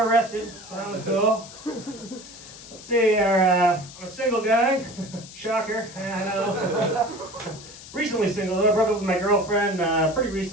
rested, so that was cool. Let's see, I'm a single guy. Shocker, I know. Recently single, I broke up with my girlfriend pretty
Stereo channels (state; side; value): noise; left; hiss, 16 dB below the sound